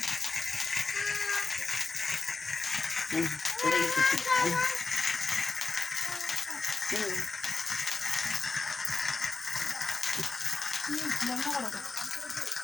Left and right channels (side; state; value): right; quieter; 4.0 dB